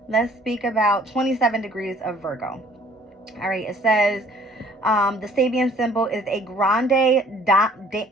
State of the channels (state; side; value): normal; both; correlation 0.56